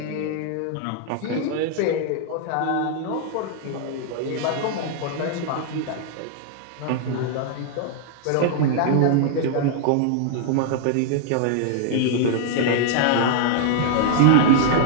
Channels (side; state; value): both; different; correlation 0.00